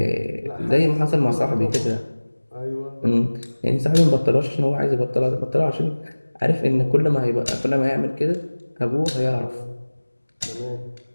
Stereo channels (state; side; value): inverted; both; correlation -1.00